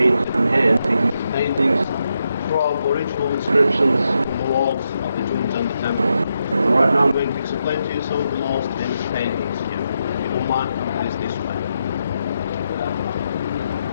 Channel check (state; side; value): inverted; both; correlation -0.83